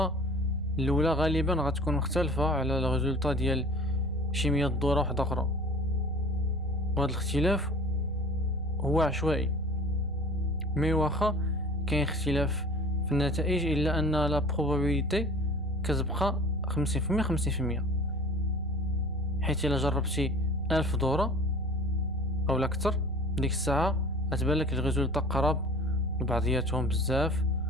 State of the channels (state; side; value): normal; both; correlation 0.45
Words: الاولى غالبا غتكون مختلفه على الريزولتا ديال شي 100 دوره واحده اخرى، وهذا الاختلاف هو عشوائي. مي واخا كاين اختلاف في النتائج الا ان لا بروبابيليتي كتبقى 50% 50%. حيت الا جربتي 1000 دورة او اكثر ديك الساعه غتبان لك الريزولطا قراب لبعضياتهم بزاف.